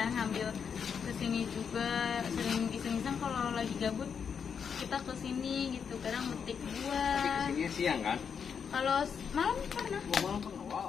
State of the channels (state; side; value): quieter; right; 6.8 dB